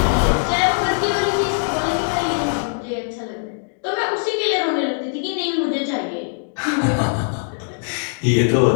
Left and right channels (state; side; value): silent; right; digital silence